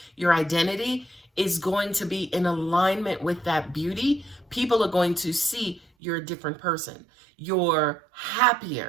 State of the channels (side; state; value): left; drops out; at 5.9 s